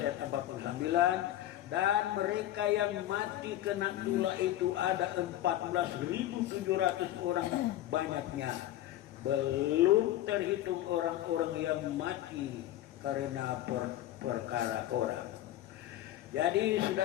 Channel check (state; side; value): quieter; right; 13.7 dB